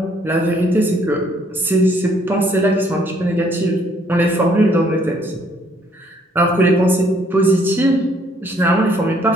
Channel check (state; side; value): normal; both; correlation 0.65